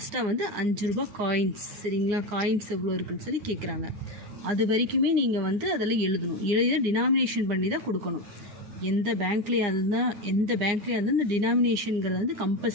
வந்து 5 ரூபா காயின்ஸ். சரிங்களா? காயின்ஸ் எவ்வளோ இருக்குன்னு சொல்லி கேட்குறாங்க. அது வரைக்குமே நீங்கள் வந்து அதில் எழுதணும். எழுதி டினாமினேஷன் பண்ணி தான் கொடுக்கணும். எந்த பேங்க்லேயே இருந்தால் இந்த டினாமினேஷனுங்கிறத வந்து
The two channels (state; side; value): late; left; 9.7 ms